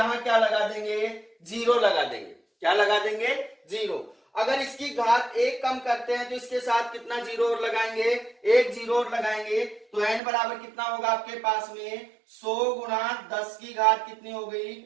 क्या लगा देंगे? 0 लगा देंगे। क्या लगा देंगे? 0। अगर इसकी घात 1 कम करते हैं तो इसके साथ कितना जीरो और लगाएंगे, 1 जीरो और लगाएंगे, तो n बराबर कितना होगा आपके पास में 100 गुणा 10 की घात कितनी हो गई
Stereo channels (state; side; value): drops out; left; at 10.2 s